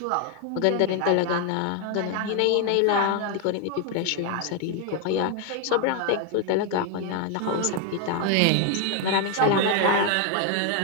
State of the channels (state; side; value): different; both; correlation 0.01